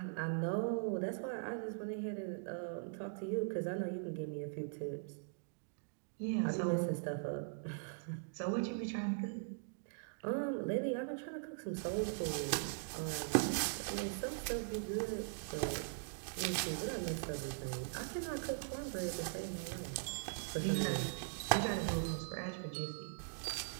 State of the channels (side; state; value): left; silent; digital silence